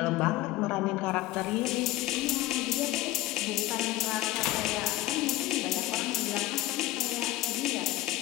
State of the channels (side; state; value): right; quieter; 16.3 dB